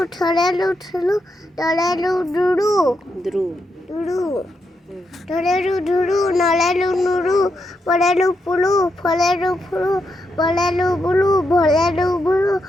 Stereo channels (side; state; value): both; normal; correlation 0.83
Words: ছড়েলু ছুলু টলেলু ডুরু দ্রু ডুরু ধরেলু ধুরু নলেলু নুরু পড়েলু পুলু ফলেলু ফুলু বলেলু বুলু ভলেলু বুলু